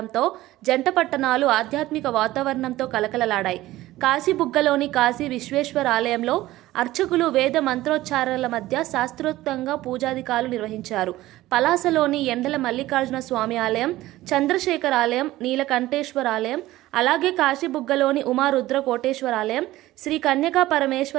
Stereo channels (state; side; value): quieter; left; 16.5 dB